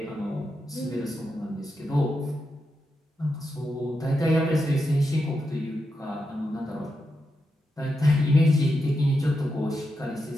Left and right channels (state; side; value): normal; both; correlation 0.86